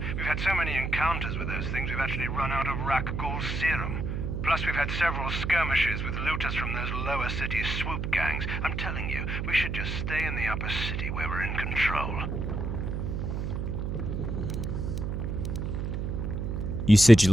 We've had so many encounters with those things, we've actually run out of Rakghoul serum. Plus, we've had several skirmishes with looters from those lower city swoop gangs. I'm telling you, we should just stay in the upper city where we're in control. You said you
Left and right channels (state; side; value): noise; right; hum, 2 dB below the sound